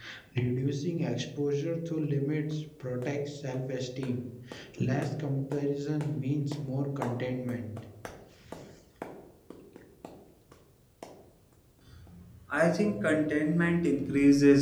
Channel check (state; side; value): identical; both; correlation 1.00